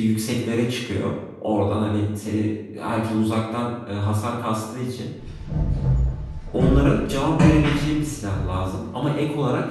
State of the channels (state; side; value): identical; both; correlation 1.00